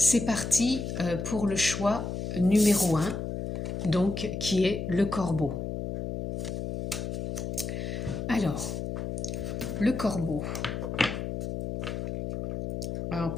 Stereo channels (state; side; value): noise; left; hum, 4 dB below the sound